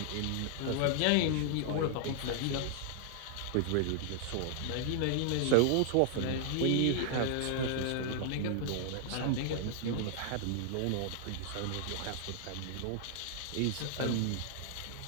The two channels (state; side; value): different; both; correlation 0.00